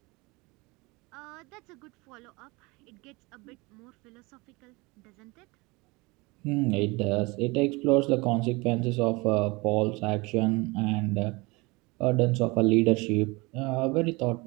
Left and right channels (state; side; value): quieter; left; 25.1 dB